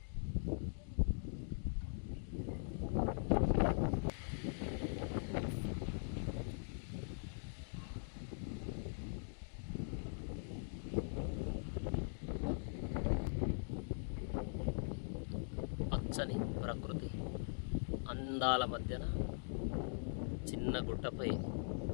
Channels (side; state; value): right; silent; digital silence